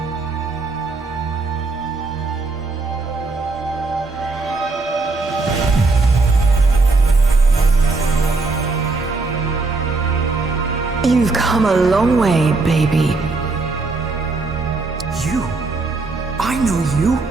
You've come a long way, baby. You? I know you.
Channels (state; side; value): quieter; left; 3.7 dB